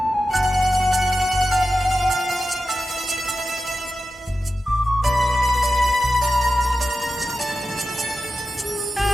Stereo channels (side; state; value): both; normal; correlation 0.92